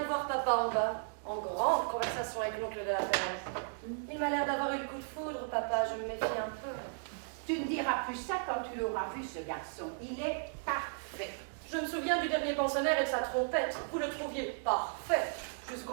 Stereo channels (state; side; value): silent; left; digital silence